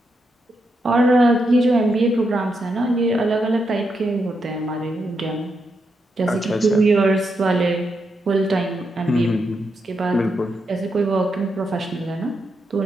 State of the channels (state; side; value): normal; both; correlation 0.83